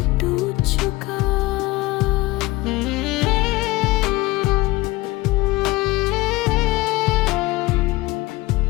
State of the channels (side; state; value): right; quieter; 20.3 dB